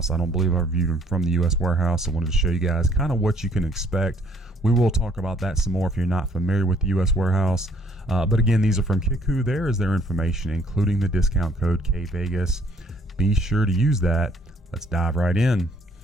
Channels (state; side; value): normal; both; correlation 0.64